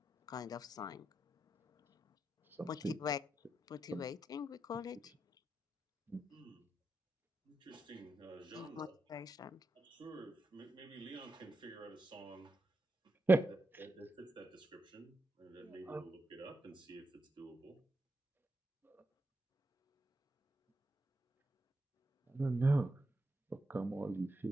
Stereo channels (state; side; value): normal; both; correlation 0.86